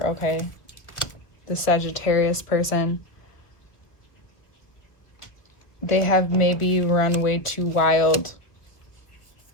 okay, the Sagittarius person. They have maybe run way too wild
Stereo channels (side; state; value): right; late; 1.6 ms